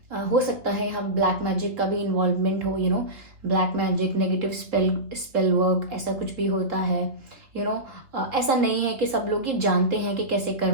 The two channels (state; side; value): late; left; 3.2 ms